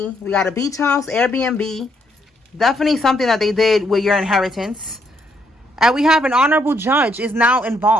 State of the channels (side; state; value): both; normal; correlation 0.73